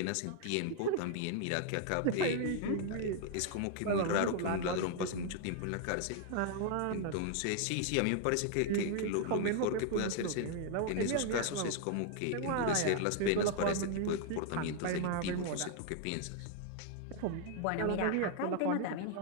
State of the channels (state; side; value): different; both; correlation 0.00